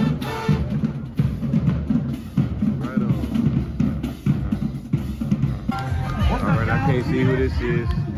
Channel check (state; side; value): identical; both; correlation 1.00